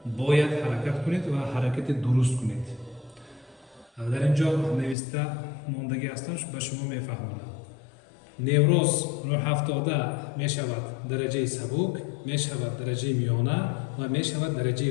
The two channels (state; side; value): drops out; right; at 5.0 s